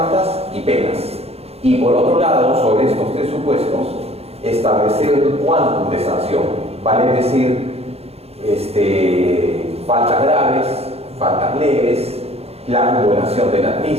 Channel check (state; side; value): late; left; 0.29 ms